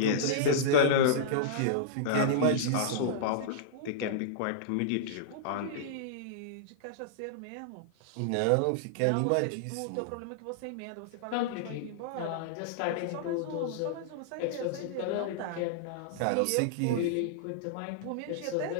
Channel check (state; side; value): different; both; correlation -0.02